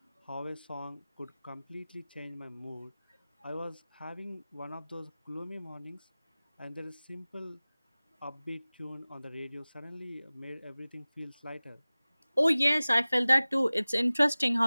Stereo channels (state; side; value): inverted; both; correlation -0.99